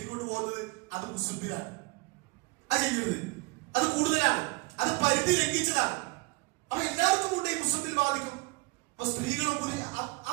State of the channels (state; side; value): quieter; left; 26.2 dB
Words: പോകുന്നത്, അത് മുസ്ലിമിലാണ്. അത് ചെയ്യരുത്, അത് കൂടുതലാണ്, അത് പരിധി ലംഘിച്ചതാണ്. അപ്പൊ എല്ലാവർക്കും കൊണ്ട് ഈ മുസ്ലിമിൽ ബാധിക്കും. അപ്പൊ സ്ത്രീകളും